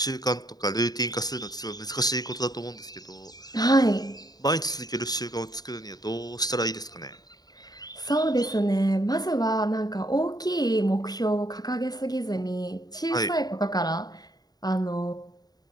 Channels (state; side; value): late; right; 0.19 ms